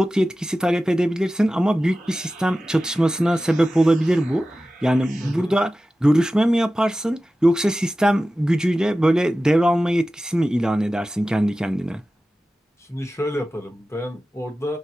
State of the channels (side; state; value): both; normal; correlation 0.95